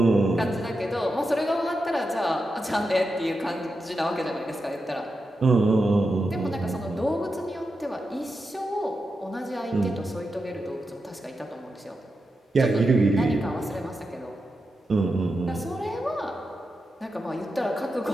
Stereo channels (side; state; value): both; normal; correlation 0.88